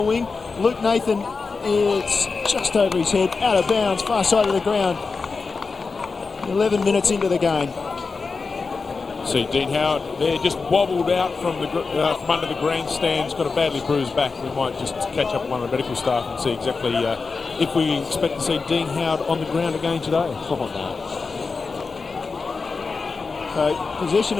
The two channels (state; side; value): quieter; right; 4.5 dB